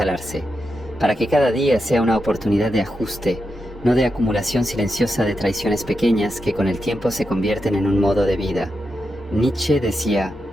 para que cada día sea una oportunidad de ajuste, no de acumulación silenciosa de traiciones pequeñas que con el tiempo se convierten en un modo de vida. Nietzsche decía:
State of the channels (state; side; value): normal; both; correlation 0.87